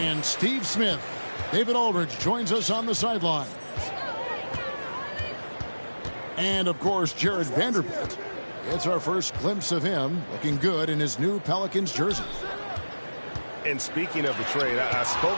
Steve Smith. David Aldridge joins us on the sideline. And, of course, Jared Vanderbilt. It's our first glimpse of him looking good in his new Pelicans jersey. And speaking of the trade, I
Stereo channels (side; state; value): both; inverted; correlation -1.00